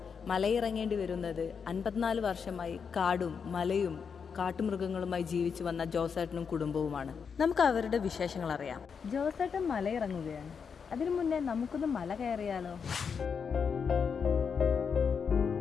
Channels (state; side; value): quieter; right; 6.3 dB